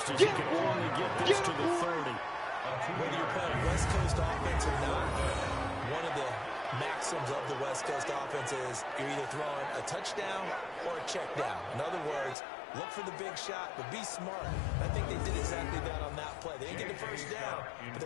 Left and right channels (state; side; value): drops out; right; at 12.4 s